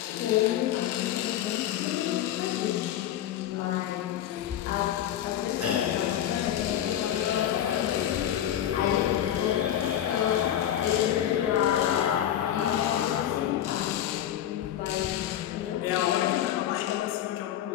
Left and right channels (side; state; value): right; quieter; 11.3 dB